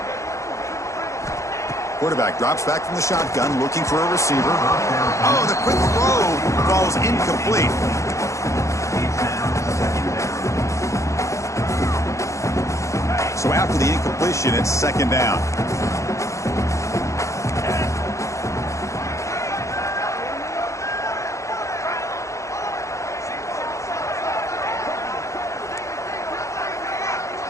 Quarterback drops back from the shotgun, looking for a receiver. Oh, the quick throw falls incomplete. So after the incompletion, it's second down.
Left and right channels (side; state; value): right; late; 0.15 ms